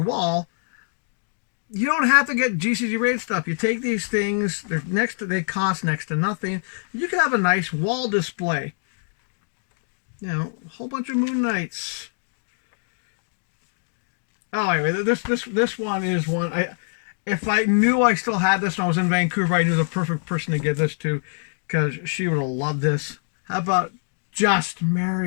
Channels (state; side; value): silent; right; digital silence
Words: wall, you don't have to get GCG rated stuff. You take these things, they cost next to nothing. You can have a nice wall display. You know, a whole bunch of Moon Knights. Oh, anyway, this one is one. If I knew I still had this when I was in Vancouver, I knew the perfect person to give this to, because she would have loved this. How about Just